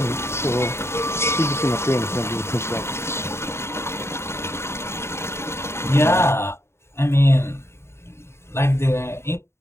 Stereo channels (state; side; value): late; right; 0.13 ms